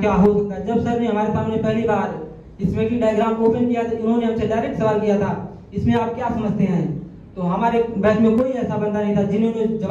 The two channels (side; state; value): both; identical; correlation 1.00